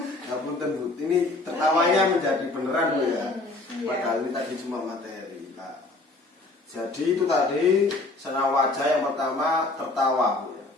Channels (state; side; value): quieter; right; 3.1 dB